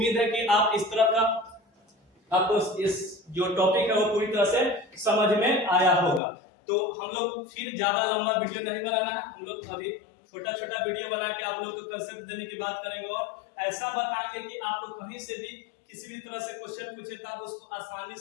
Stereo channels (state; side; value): drops out; right; at 6.2 s